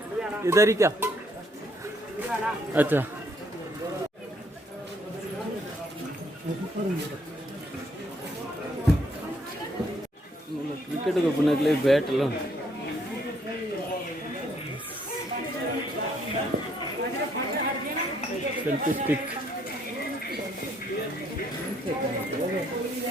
इधर ही क्या? अच्छा क्रिकेट को पुनः के लिए बैट लो सेल्फी स्टिक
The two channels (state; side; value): normal; both; correlation 0.68